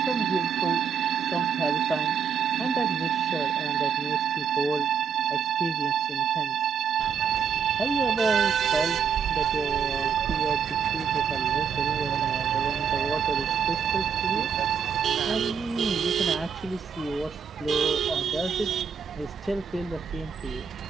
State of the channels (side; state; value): left; quieter; 6.8 dB